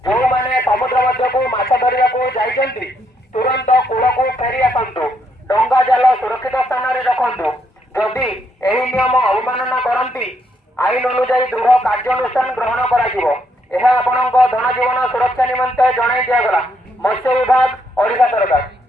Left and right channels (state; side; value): normal; both; correlation 0.74